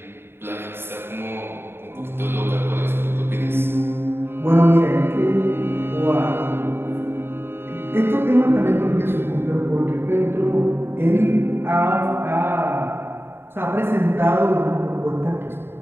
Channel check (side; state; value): left; late; 0.11 ms